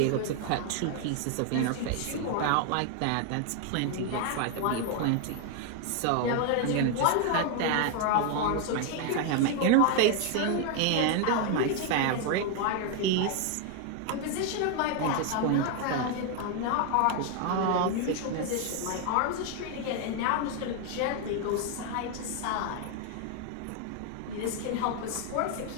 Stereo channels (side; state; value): both; different; correlation 0.01